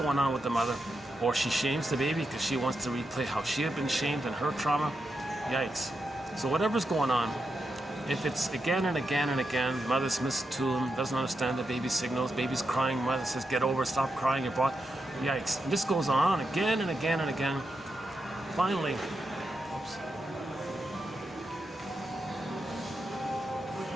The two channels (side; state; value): both; normal; correlation 0.86